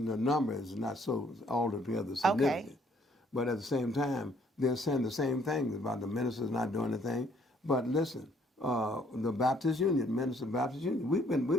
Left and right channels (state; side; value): normal; both; correlation 0.64